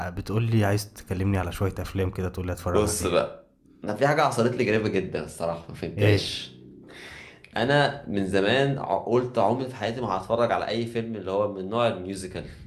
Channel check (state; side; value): identical; both; correlation 1.00